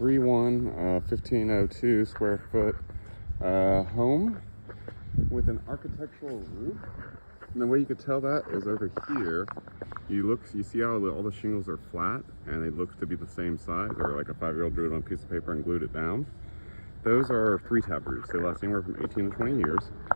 square foot home with an architectural roof. And the way you could tell that is over here. You see how all the shingles are flat and it looks to be the same size, or like a 5-year-old drew it on a piece of paper and glued it down. Those are 3-tab roofs. They last anywhere from 18 to 20 years.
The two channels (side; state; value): both; inverted; correlation -1.00